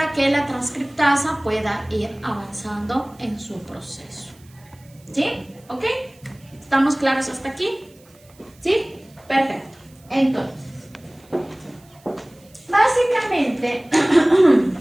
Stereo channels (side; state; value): right; noise; hiss, 29 dB below the sound